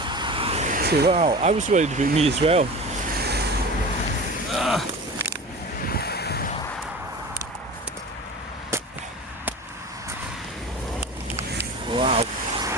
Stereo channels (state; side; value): normal; both; correlation 0.34